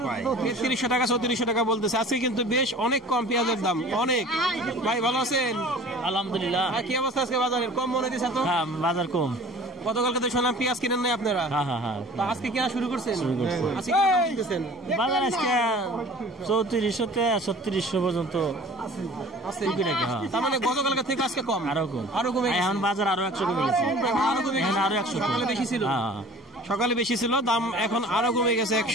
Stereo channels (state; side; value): normal; both; correlation 0.45